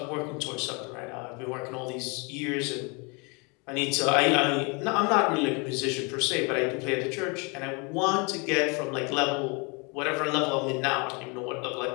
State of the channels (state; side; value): quieter; right; 31.1 dB